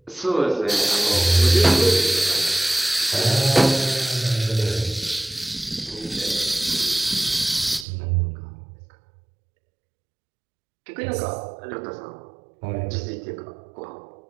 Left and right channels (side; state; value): left; drops out; at 7.9 s